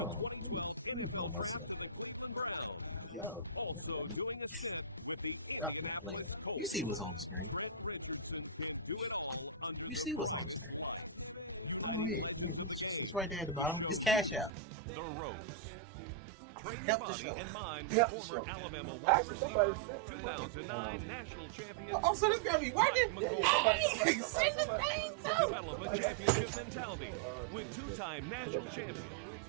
Let me pull myself. Yo. You see what's on the screen. You see what's on the screen. Oh, yeah. It's right there at the bottom. It's Cash App. Help the show. Help the show. Actually, somebody said oh, so this gotta be working? Yeah.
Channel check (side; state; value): left; drops out; at 14.5 s